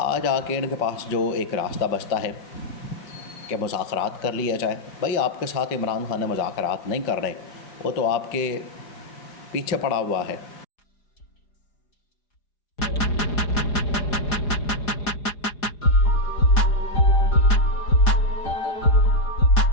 آج آ کے ان کے پاس جو ایک راستہ بچتا ہے کہ مذاکرات کر لیا جائے۔ بھائی آپ کے ساتھ عمران خان مذاکرات نہیں کر رہے، وہ تو آپ کے پیچھے پڑا ہوا ہے،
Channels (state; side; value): late; right; 4.9 ms